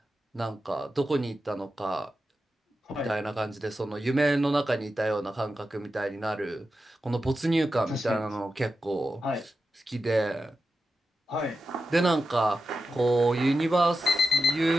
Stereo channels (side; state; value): both; normal; correlation 0.91